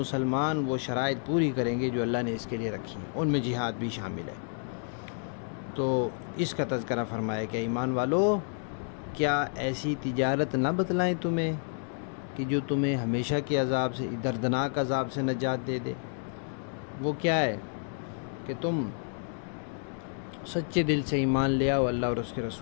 وہ شرائط پوری کریں گے جو اللہ نے اس کے لیے رکھی ہیں، ان میں جہاد بھی شامل ہے۔ تو اس کا تذکرہ فرمایا کہ ایمان والو، کیا ایسی تجارت نہ بتلائیں تمہیں کہ جو تمہیں ہمیشہ کے عذاب سے، دردناک عذاب سے نجات دے دے؟ وہ کیا ہے کہ تم سچے دل سے ایمان لے آؤ اللہ اور اس کے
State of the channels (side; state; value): right; silent; 58 dB below the other